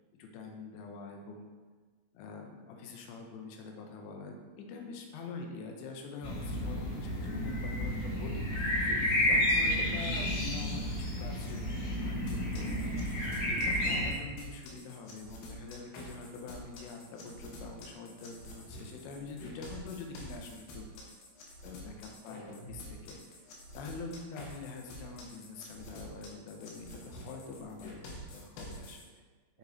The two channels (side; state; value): right; late; 17 ms